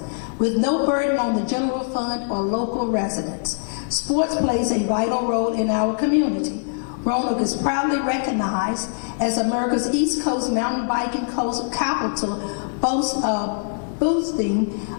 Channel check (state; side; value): silent; right; 63 dB below the other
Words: with no burden on the general fund or local residents. Sports plays a vital role in our community. Roanoke is proudly recognized as America's East Coast mountain biking capital, boasting